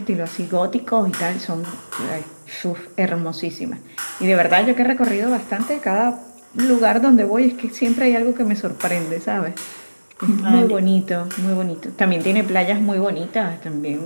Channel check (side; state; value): both; inverted; correlation -1.00